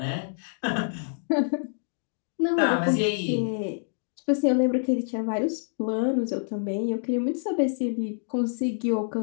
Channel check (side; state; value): right; silent; digital silence